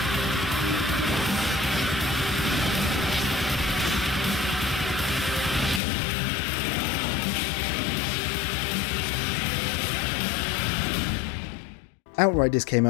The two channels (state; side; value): drops out; right; at 5.8 s